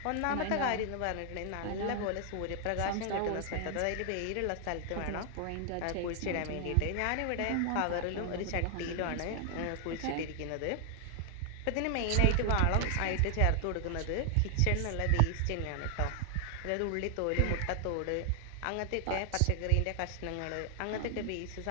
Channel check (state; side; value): different; both; correlation 0.00